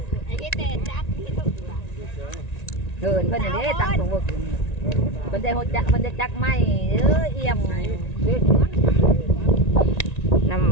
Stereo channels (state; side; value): late; right; 1.9 ms